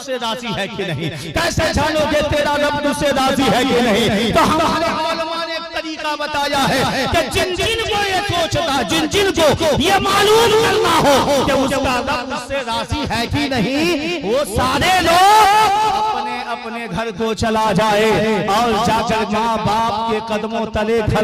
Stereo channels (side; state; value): both; identical; correlation 1.00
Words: राजी है कि नहीं? कैसे जानोगे तेरा रब तुझसे राजी है कि नहीं? तो हमारे औलमा ने एक तरीका बताया है कि जिन जिन को ये सोचता, जिन जिन को ये मालूम करना हो कि उसका रब उससे राजी है कि नहीं, वो सारे लोग अपने अपने घर को चला जाए और जाकर माँ बाप के कदमों तले